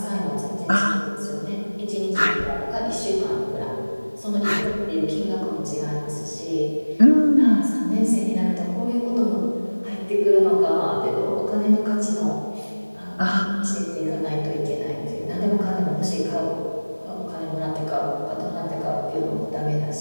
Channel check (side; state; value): both; inverted; correlation -1.00